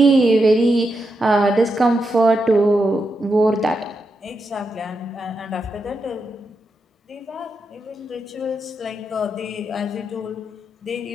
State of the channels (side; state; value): both; normal; correlation 0.85